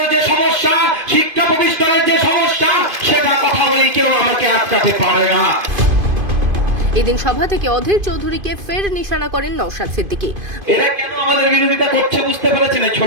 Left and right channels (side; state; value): left; late; 2.5 ms